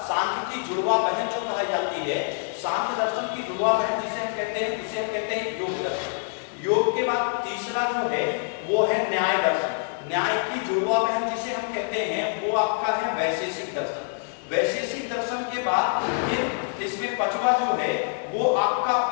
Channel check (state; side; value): silent; right; 59 dB below the other